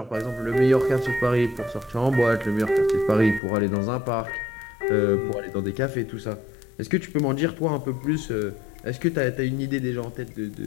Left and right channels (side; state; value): right; drops out; at 3.4 s